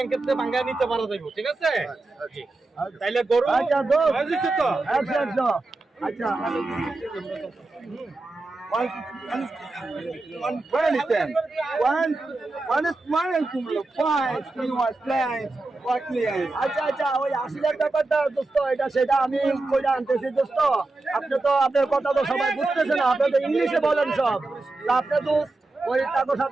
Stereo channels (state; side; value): quieter; left; 3.2 dB